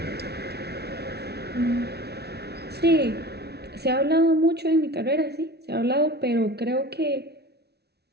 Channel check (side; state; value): left; late; 0.48 ms